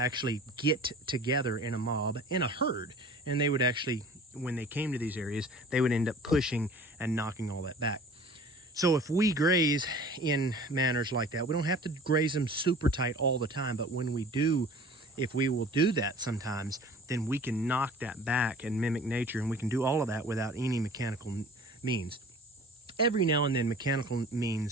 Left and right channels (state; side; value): normal; both; correlation 0.44